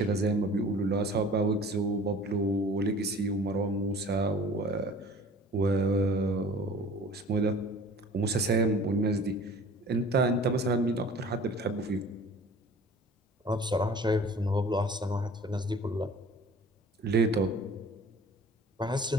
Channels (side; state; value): both; normal; correlation 0.46